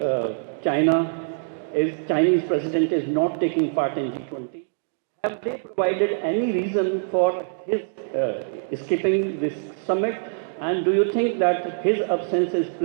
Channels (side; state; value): left; silent; digital silence